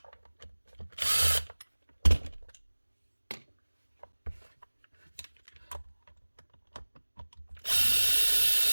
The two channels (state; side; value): inverted; both; correlation -1.00